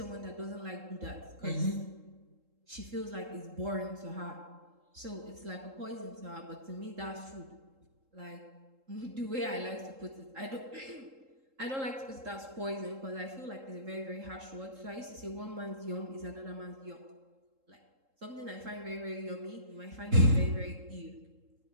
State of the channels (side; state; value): left; late; 3.7 ms